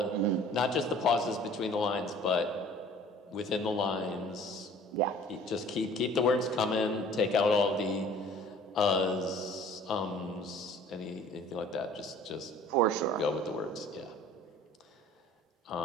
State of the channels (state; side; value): normal; both; correlation 0.50